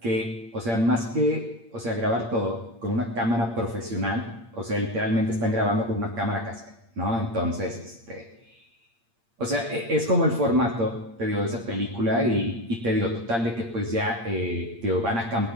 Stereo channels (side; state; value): left; late; 8.7 ms